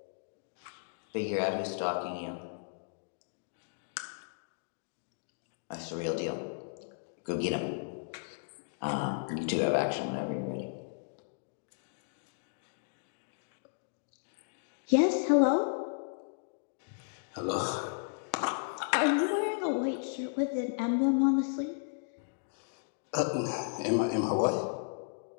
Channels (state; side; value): silent; right; digital silence